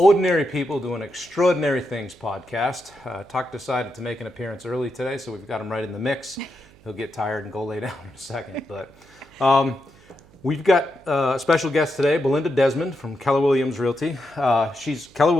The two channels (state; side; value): noise; right; hum, 27 dB below the sound